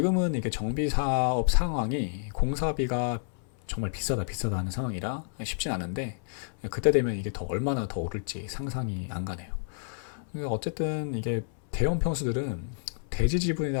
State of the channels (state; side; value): silent; right; 58 dB below the other